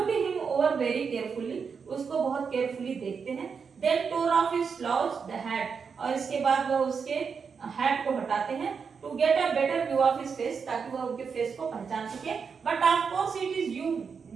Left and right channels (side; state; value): left; quieter; 5.9 dB